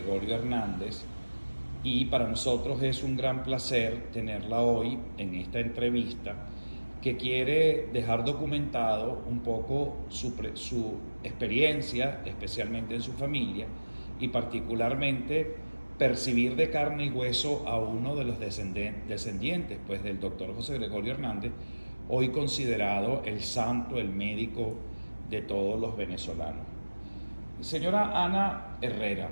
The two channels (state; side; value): inverted; both; correlation -1.00